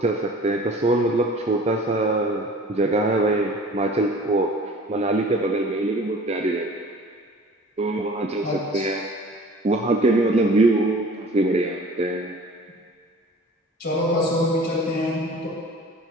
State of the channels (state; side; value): normal; both; correlation 0.45